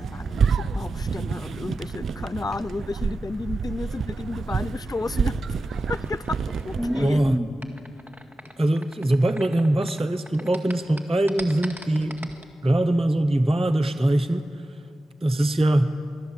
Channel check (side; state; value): both; normal; correlation 0.93